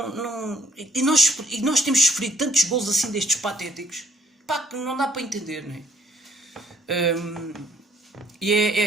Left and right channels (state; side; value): normal; both; correlation 0.63